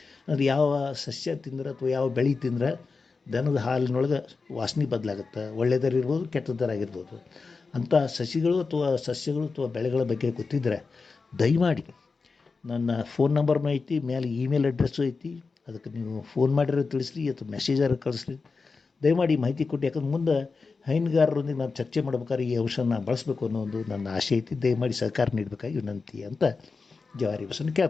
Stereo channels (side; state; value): right; quieter; 4.5 dB